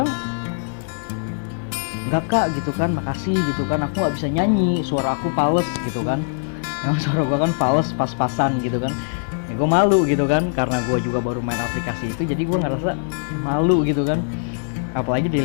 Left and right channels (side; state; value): right; silent; 64 dB below the other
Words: enggak kak gitu kan, makasih gitu kan, aku nggak bisa nyanyi, suara aku fals gitu kan. Emang suara gue kan fals, pas-pasan gitu kan ya. Gue malu gitu kan, karena gue juga baru main aplikasi itu, jadi gue ngerasa malu gitu kan, apalagi